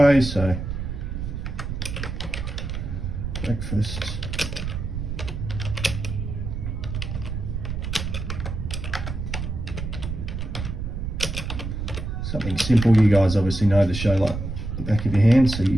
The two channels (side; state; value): right; noise; rumble, 5 dB below the sound